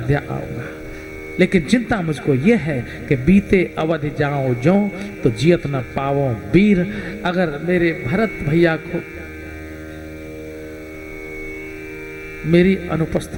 आऊंगा। लेकिन चिंता मुझको यह है कि बीते अवध जाओ जो तो जियत न पावो वीर। अगर मेरे भरत भैया को मेरी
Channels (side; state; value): both; identical; correlation 1.00